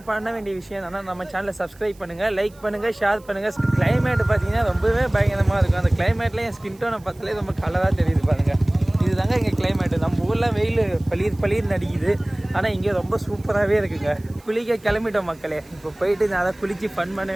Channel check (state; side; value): noise; right; hiss, 28 dB below the sound